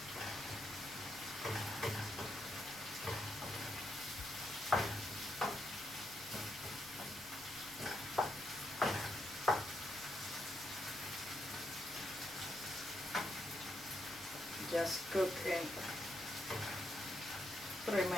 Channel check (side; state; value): right; noise; rumble, 20 dB below the sound